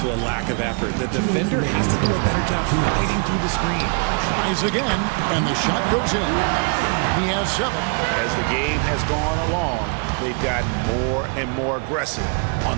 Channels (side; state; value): left; quieter; 37.8 dB